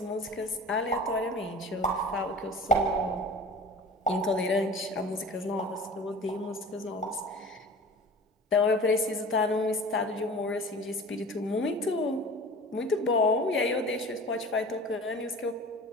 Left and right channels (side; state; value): both; normal; correlation 0.39